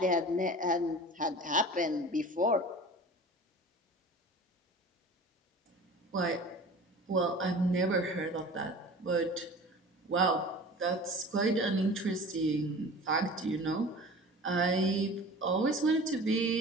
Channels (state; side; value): normal; both; correlation 0.40